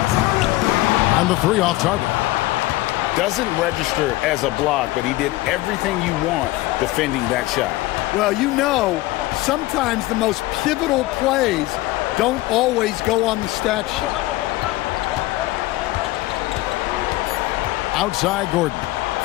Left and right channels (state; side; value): quieter; right; 18.4 dB